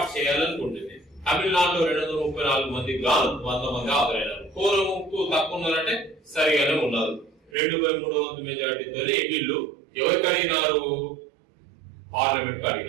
చేయాలనుకుంటుంది. తమిళనాడులో 234 మందికి గాను 100 మంది హాజరైనారు. కోరంకు తక్కువ ఉన్నారంటే సరిగానే ఉన్నారు. 2/3 వంతు మెజార్టీతో వీళ్ళు ఎవరికి అడిగినారు? పార్లమెంట్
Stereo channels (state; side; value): drops out; left; at 7.5 s